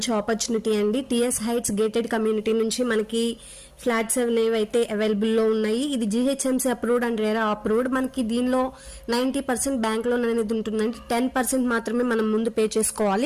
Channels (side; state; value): both; identical; correlation 1.00